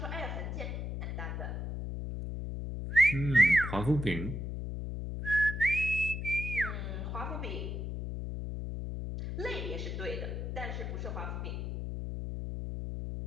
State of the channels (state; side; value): noise; left; hum, 4 dB below the sound